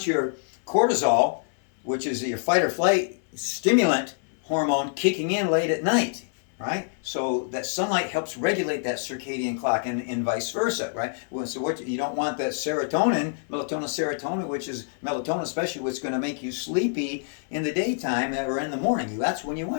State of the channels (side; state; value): right; silent; 61 dB below the other